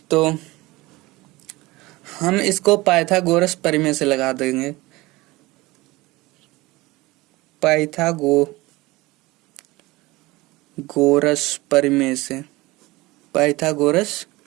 तो हम इसको पाइथागोरस प्रमेय से लगा देंगे। पाइथागोरस प्रमेय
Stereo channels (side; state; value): left; quieter; 20.9 dB